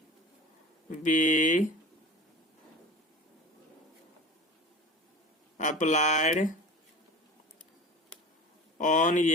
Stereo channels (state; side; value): normal; both; correlation 0.36